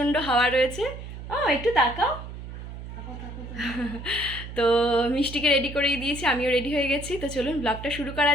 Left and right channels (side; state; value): right; noise; hum, 11 dB below the sound